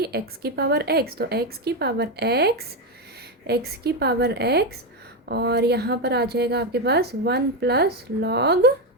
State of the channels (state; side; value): normal; both; correlation 0.08